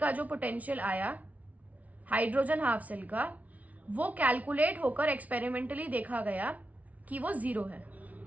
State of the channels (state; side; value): late; left; 0.070 ms